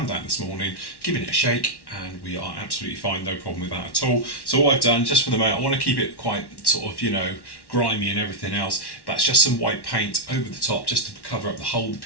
down this morning, giving it a shake, and we are absolutely fine, no problem with that at all. So what I've done, just for the moment, I want to keep it quite sort of, you know, grimy and everything else. That's just some white paint over the top just to cover up the hole. The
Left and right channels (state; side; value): late; right; 1.1 ms